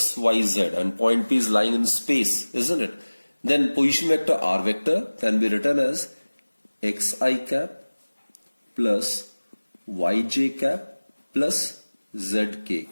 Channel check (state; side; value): inverted; both; correlation -1.00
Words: y, z and point P is lying in space, isn't it? Then position vector R vector can be written as xi cap plus yj cap plus zk